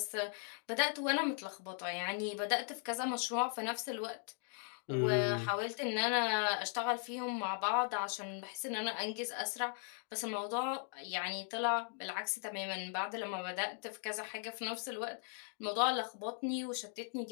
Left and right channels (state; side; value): silent; right; 52 dB below the other